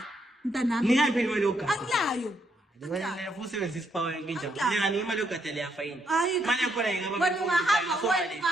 Mntanami. Ningaphi imali yokugada? Akulayo. Wena usebenzisa isipawa nginjani? Ngani imali yokugada leyafayini. Imali yakhona ingaba wena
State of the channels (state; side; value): normal; both; correlation 0.76